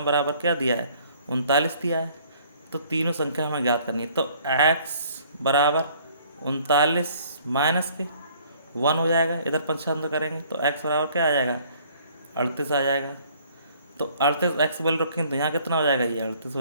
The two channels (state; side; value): inverted; both; correlation -0.58